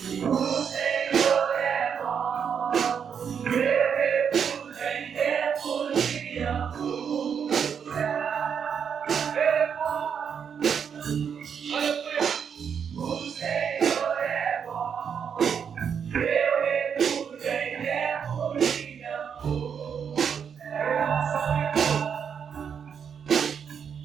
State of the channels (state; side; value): quieter; left; 7.3 dB